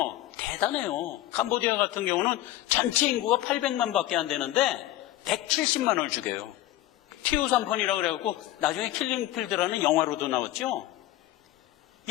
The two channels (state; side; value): quieter; right; 15.2 dB